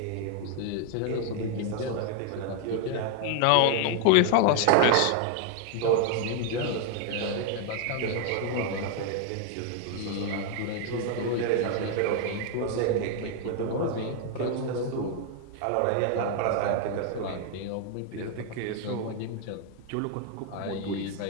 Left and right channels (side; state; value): both; different; correlation 0.00